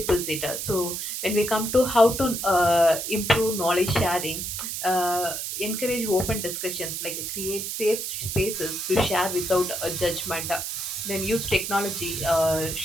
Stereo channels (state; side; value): noise; right; hiss, 4 dB below the sound